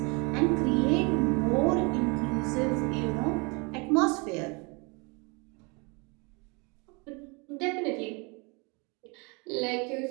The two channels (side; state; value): left; quieter; 30.4 dB